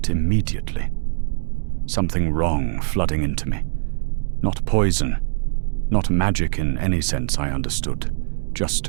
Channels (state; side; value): silent; left; digital silence